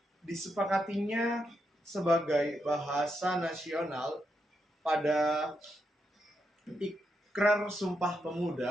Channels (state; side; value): normal; both; correlation 0.82